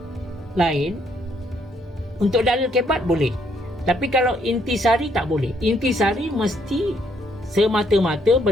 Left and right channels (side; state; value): both; normal; correlation 0.70